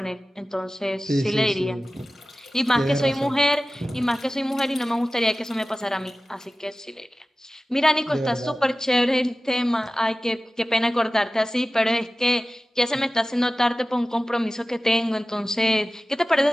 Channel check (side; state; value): both; normal; correlation 0.96